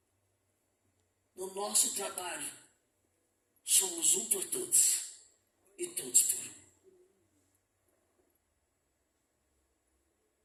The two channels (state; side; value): identical; both; correlation 1.00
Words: no nosso trabalho, somos um por todos e todos por um.